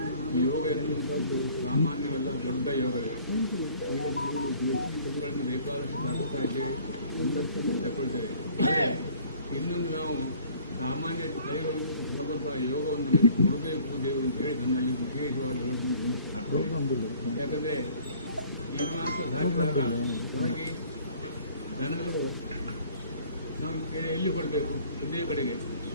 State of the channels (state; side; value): inverted; both; correlation -0.54